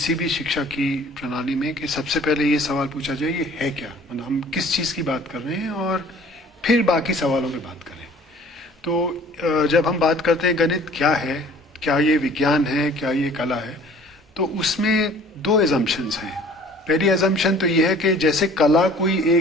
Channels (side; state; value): both; normal; correlation 0.51